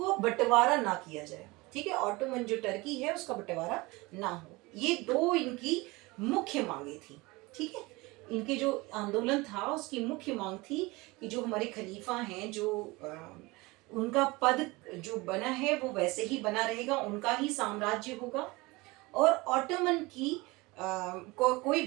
बंटवारा ना किया जाए। ठीक है, ऑटोमन जो टर्की है उसका बंटवारा ना हो। ये दो इनकी मुख्य मांगे थी। ठीक है, इनके जो आंदोलन था उसकी मुख्य मांग थी कि जो हमारे खलीफा हैं, जो उनका पद जो बना है वो वैसे ही बना रहेगा, उनका ही साम्राज्य होगा, और ऑटोमन की कोई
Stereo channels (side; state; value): left; quieter; 23.1 dB